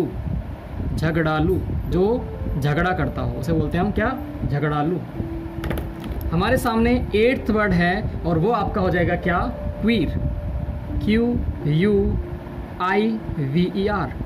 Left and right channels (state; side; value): identical; both; correlation 1.00